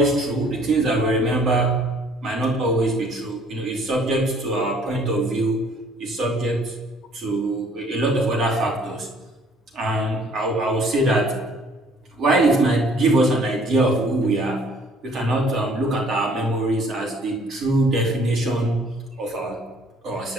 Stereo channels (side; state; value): both; normal; correlation 0.58